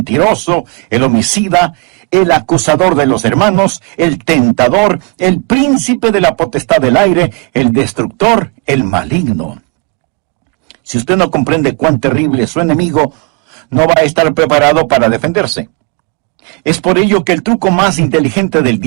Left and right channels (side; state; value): left; quieter; 33.2 dB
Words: el homicida, el acusador de los hermanos, el tentador, el príncipe de la potestad del aire, el destructor, el maligno. Si usted no comprende cuán terrible es su enemigo, no va a estar preparado para defenderse. Es por ello que el truco más inteligente del